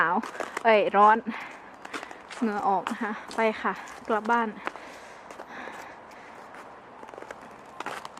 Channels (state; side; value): identical; both; correlation 1.00